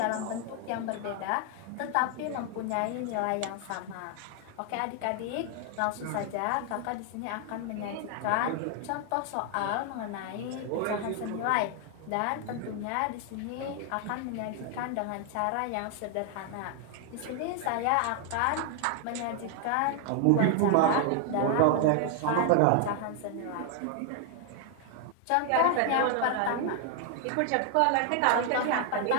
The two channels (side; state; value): both; different; correlation 0.00